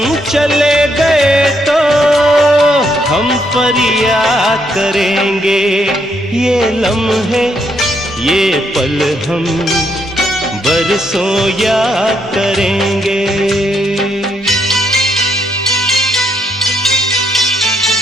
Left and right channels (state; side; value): normal; both; correlation 0.75